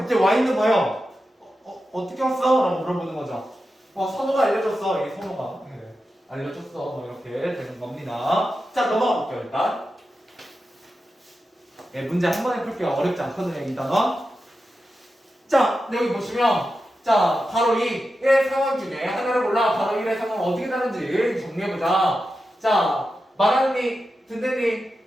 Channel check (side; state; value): both; normal; correlation 0.91